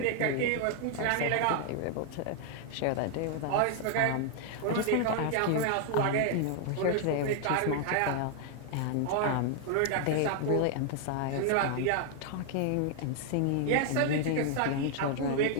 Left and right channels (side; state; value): both; different; correlation 0.00